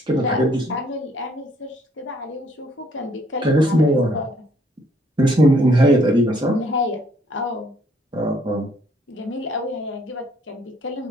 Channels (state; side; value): normal; both; correlation 0.65